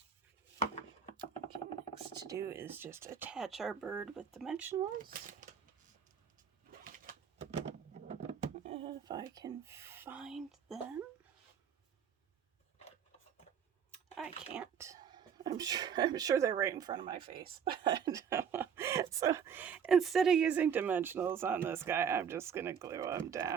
Okay, next to do is just attach our bird with dimensionals. If I can find them. I can't. I'm sure they're right in front of my face. But so instead of using dimensionals on this guy, I'm just going to glue them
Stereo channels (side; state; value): left; quieter; 7.5 dB